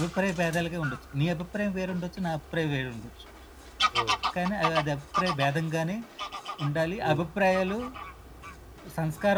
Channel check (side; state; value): both; identical; correlation 1.00